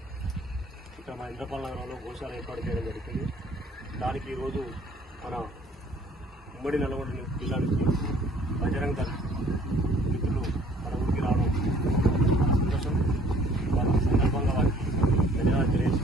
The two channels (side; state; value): both; normal; correlation 0.57